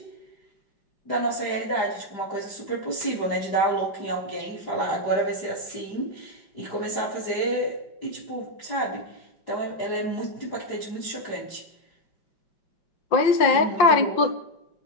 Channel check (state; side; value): late; right; 5.6 ms